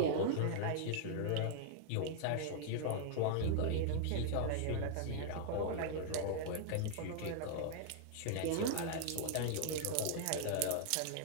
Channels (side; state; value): both; different; correlation -0.01